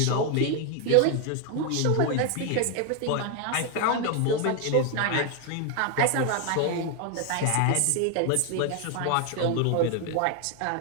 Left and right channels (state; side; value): different; both; correlation 0.01